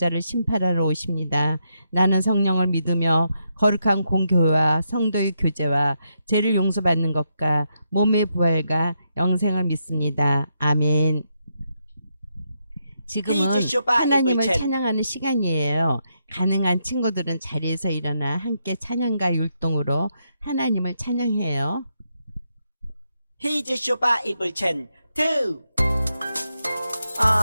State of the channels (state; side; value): inverted; both; correlation -0.81